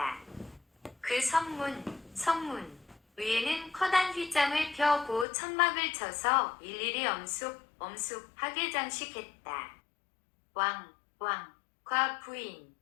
그 성문 위에는 커다란 휘장을 펴고 천막을 쳐서 일일이 엄숙하게 장식했다. 왕과 부인,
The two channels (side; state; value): right; drops out; at 5.2 s